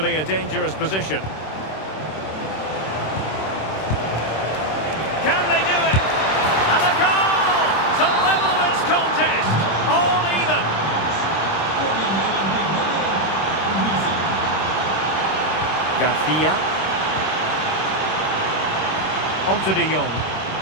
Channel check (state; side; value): late; right; 26 ms